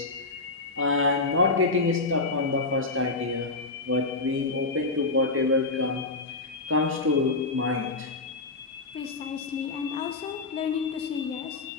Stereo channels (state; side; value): quieter; right; 3.5 dB